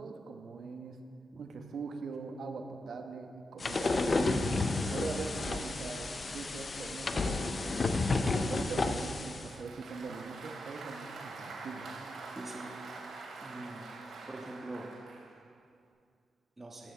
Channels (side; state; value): both; normal; correlation 0.87